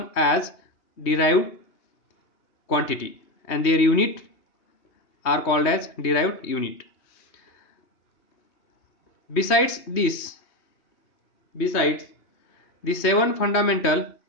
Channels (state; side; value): late; right; 3.2 ms